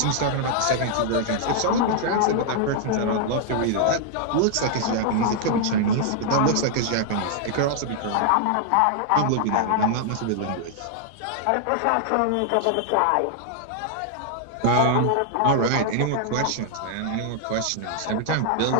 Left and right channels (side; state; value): both; different; correlation -0.01